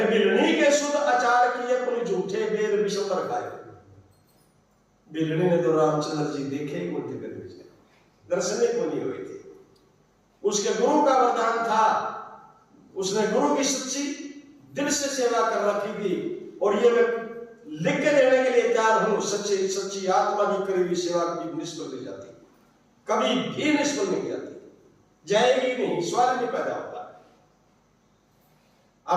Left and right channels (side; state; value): both; identical; correlation 1.00